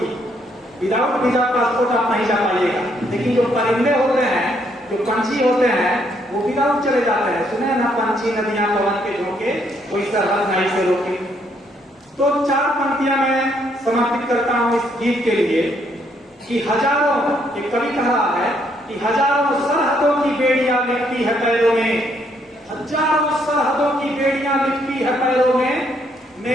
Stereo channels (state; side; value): normal; both; correlation 0.71